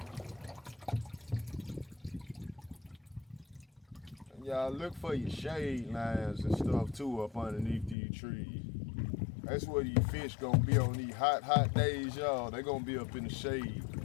Y'all look for your shade lines and stuff too up underneath these trees. That's where these fish gonna be on these hot days, y'all. They gonna be up in the shade.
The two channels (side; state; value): right; drops out; at 8.0 s